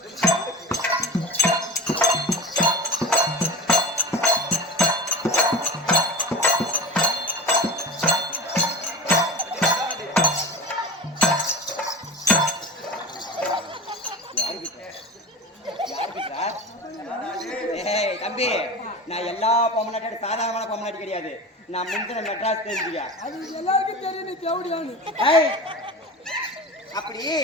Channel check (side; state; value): both; normal; correlation 0.30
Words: தம்பி, நான் எல்லா பொம்மநாட்டியோட சாதாரணமான பொம்மநாட்டி கிடையாது. நான் முந்தின மெட்ராஸ் தெரிஞ்சுக்க. அது எல்லாருக்கும் தெரியும். நீ தேவடியானு அப்படி